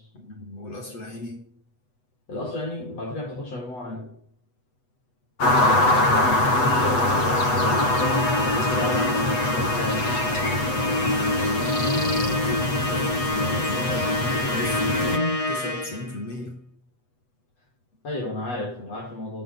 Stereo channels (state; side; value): late; right; 8.1 ms